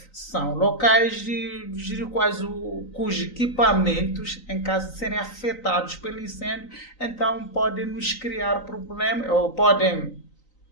são locais cujos equipamentos, em caso de serem afetados pelo incêndio, então podem nos criar problemas, ou podem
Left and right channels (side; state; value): right; late; 3.9 ms